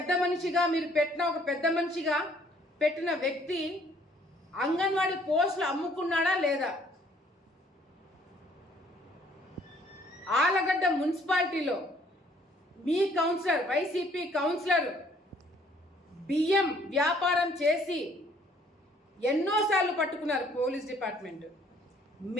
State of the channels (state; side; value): normal; both; correlation 0.62